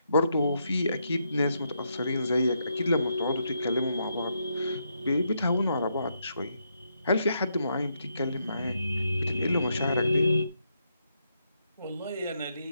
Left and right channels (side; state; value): both; inverted; correlation -0.80